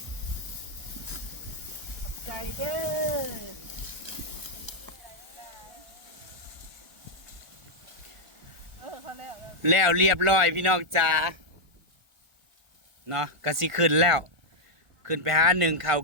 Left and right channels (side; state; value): left; late; 1.4 ms